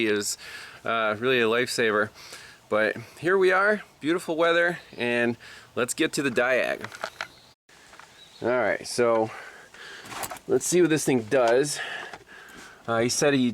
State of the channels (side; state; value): both; identical; correlation 1.00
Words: It was really a lifesaver. But here we are, beautiful weather, and let's get to the diag. Alright, so let's see what this thing does. He said he